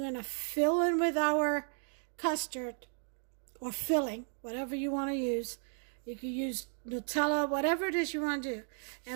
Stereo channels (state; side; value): silent; left; 55 dB below the other